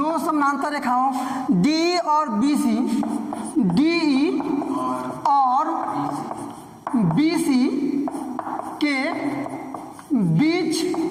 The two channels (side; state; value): both; identical; correlation 1.00